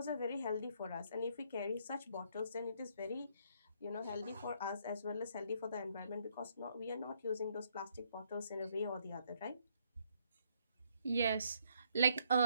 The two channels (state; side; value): inverted; both; correlation -0.70